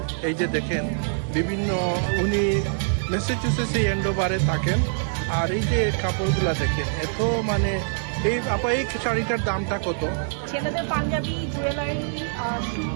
এই যে দেখেন, বিভিন্ন উনি ম্যাসাচুসেটস এই এন্ডোভারে থাকেন, আর এই যে কাপড়গুলো দেখেন, এত মানে এই আপা এই শাড়িটার দামটা কত? ছেলেদের পাঞ্জাবি, জুয়েলারি, শু,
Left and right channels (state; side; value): silent; left; 59 dB below the other